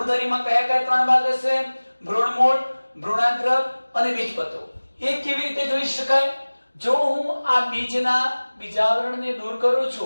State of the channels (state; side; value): inverted; both; correlation -1.00